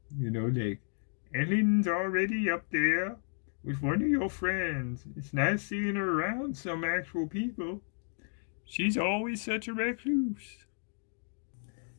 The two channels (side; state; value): right; silent; 56 dB below the other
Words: like, "Ellen's already up there with one of your friends. It's nice seeing her around some actual people. She's always such a recluse."